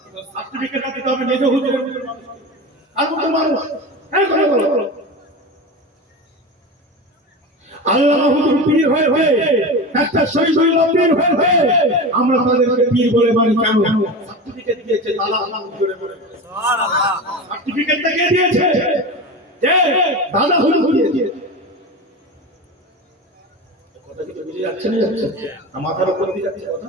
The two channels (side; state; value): both; normal; correlation 0.26